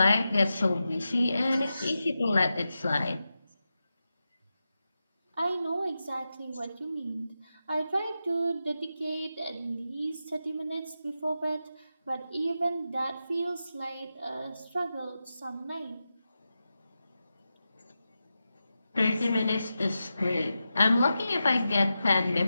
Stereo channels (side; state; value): both; inverted; correlation -0.91